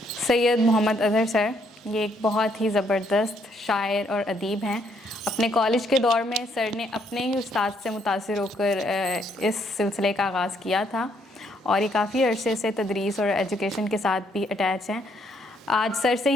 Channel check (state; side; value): normal; both; correlation 0.71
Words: سید محمد اظہر سر. یہ ایک بہت ہی زبردست شاعر اور ادیب ہیں. اپنے کالج کے دور میں سر نے اپنے ہی استاد سے متاثر ہو کر اس سلسلے کا آغاز کیا تھا اور یہ کافی عرصے سے تدریس اور ایجوکیشن کے ساتھ بھی اٹیچ ہیں. آج سر سے